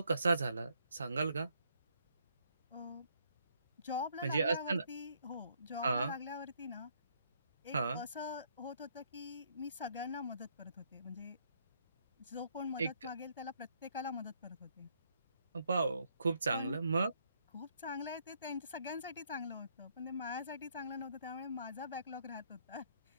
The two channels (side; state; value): both; inverted; correlation -0.71